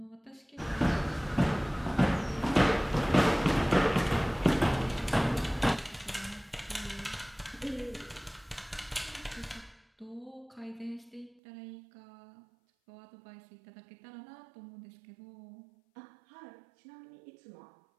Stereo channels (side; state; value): left; drops out; at 11.4 s